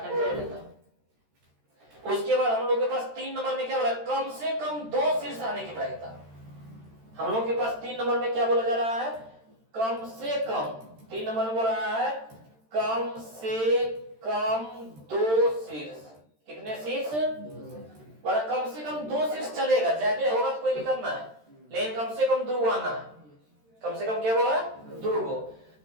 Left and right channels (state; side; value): late; left; 13 ms